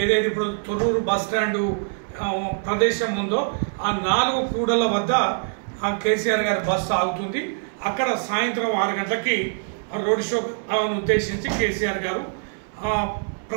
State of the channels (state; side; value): silent; left; 63 dB below the other